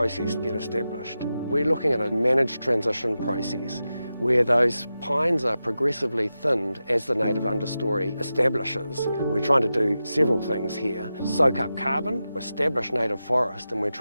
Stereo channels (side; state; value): both; inverted; correlation -0.92